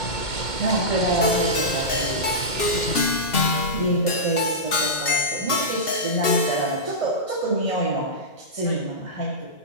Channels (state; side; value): late; right; 2.8 ms